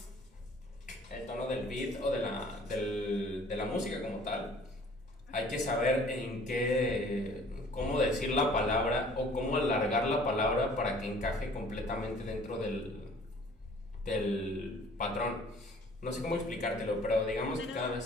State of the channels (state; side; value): normal; both; correlation 0.53